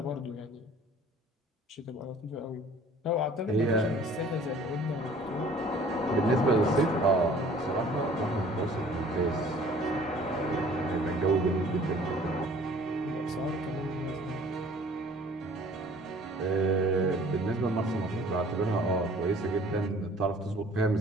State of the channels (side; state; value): both; normal; correlation 0.52